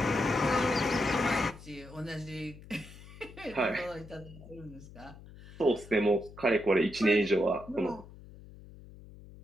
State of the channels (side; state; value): left; noise; hum, 18 dB below the sound